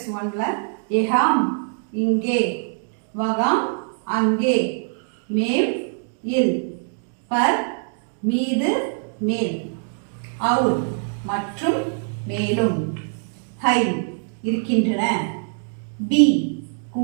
1ல எஹாம் இங்கே, வகாம் அங்கே, மேல் இல், பர் மீது மேல், அவுல் மற்றும் மேலும், ஹை இருக்கின்றன, பி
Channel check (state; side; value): silent; left; 56 dB below the other